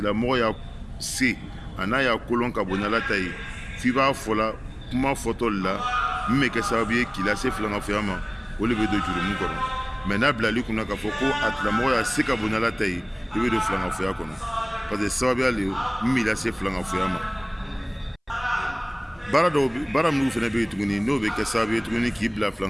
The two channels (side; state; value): both; identical; correlation 1.00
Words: y'a se a n'a y'a kolon ka bon n'ala ta ye, f'i b'a fɔla kuma fɔtɔ de la min bɛ kɛ sababu ye k'i lase filankafoya ma, o de bɛ don jurumu kɔnɔ. Mais n'a bilali kunna k'a fɔ ko a tigilamɔgɔ y'a se ka bon n'ala ta ye, i bɛ don filankafoya kɔnɔ parce que sababuya le min b'i lase filankafoya ma. bara minnu fana bɛ yen tuguni n'o bɛ kɛ sababu ye tuguni k'i bila